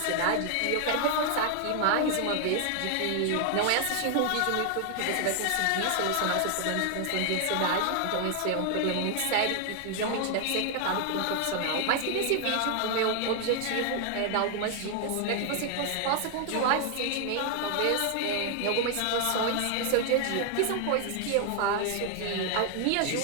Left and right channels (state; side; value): different; both; correlation 0.00